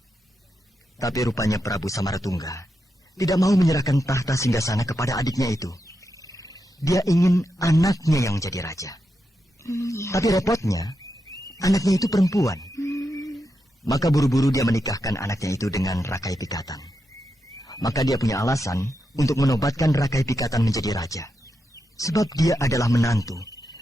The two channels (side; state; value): both; normal; correlation 0.86